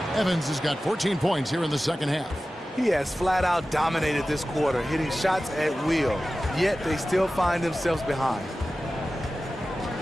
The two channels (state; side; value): normal; both; correlation 0.95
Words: Evans has got 14 points here in the second half. He has flat out dominated this quarter, hitting shots at will, yet they still find themselves behind.